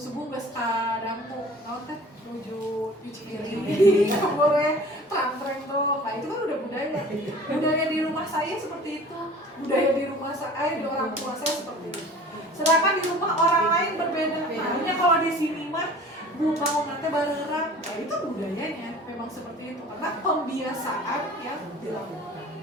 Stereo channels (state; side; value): normal; both; correlation 0.45